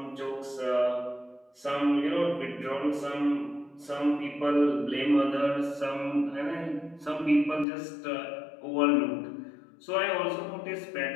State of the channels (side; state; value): right; drops out; at 7.7 s